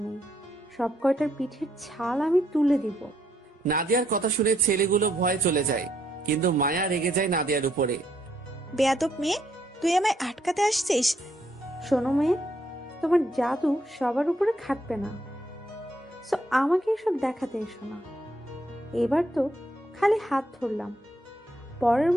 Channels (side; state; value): both; normal; correlation 0.72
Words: নেই। সব কয়টার পিঠের ছাল আমি তুলে দিব। নাদিয়ার কথা শুনে ছেলেগুলো ভয়ে চলে যায়, কিন্তু মায়া রেগে যায় নাদিয়ার উপরে। বেয়াদব মেয়ে, তুই আমায় আটকাতে আসছিস? শোনো মেয়ে, তোমার জাদু সবার উপরে খাটবে না, সো আমাকে এসব দেখাতে এসো না। এবার তো খালি হাত ধরলাম, পরের